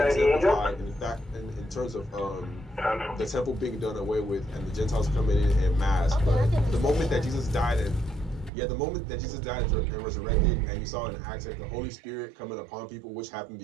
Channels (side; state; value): left; drops out; at 8.5 s